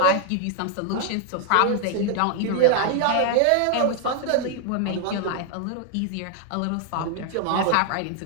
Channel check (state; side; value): different; both; correlation 0.00